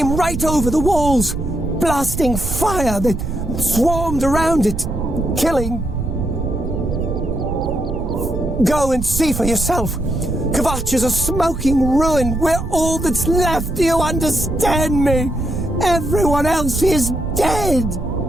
right over the walls, blasting fire that swarmed around it, killing. Go and see for yourself. Kvatch is a smoking ruin. We're all that's left. Do you understand me? Everyone else is dead.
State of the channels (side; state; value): right; noise; rumble, 5 dB below the sound